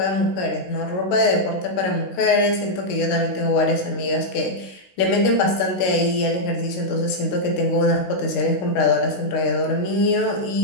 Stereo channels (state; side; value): late; right; 16 ms